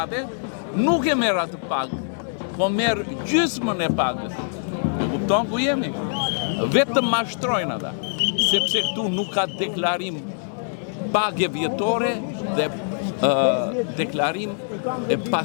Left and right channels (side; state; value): right; silent; digital silence